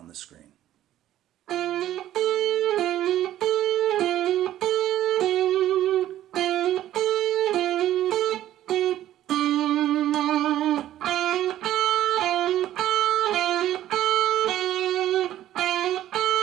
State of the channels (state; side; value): quieter; left; 12.9 dB